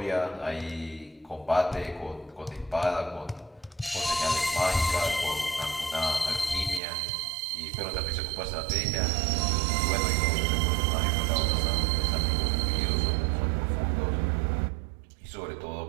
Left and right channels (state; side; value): drops out; left; at 6.8 s